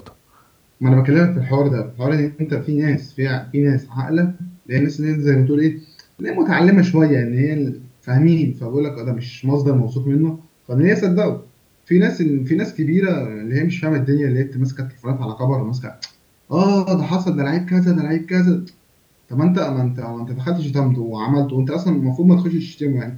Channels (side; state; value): both; identical; correlation 1.00